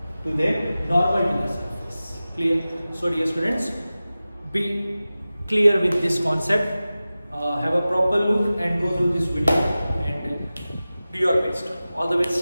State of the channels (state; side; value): inverted; both; correlation -0.96